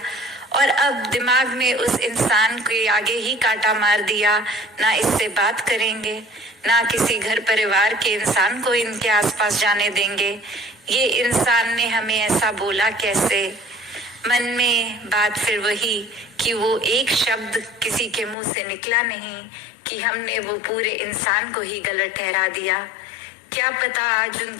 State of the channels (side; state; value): right; drops out; at 18.4 s